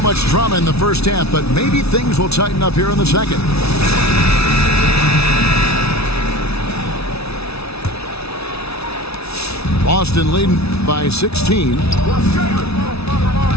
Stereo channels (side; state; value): right; late; 0.79 ms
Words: much drama in the first half, but maybe things will tighten up here in the second. Boston leading by 16.